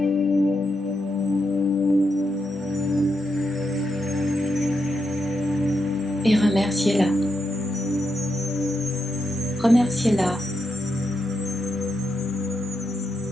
et remerciez-la. Remerciez-la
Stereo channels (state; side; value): normal; both; correlation 0.83